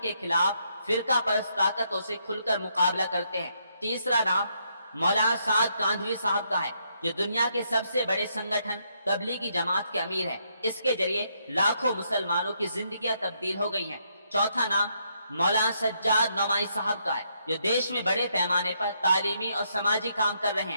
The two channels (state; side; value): inverted; both; correlation -0.76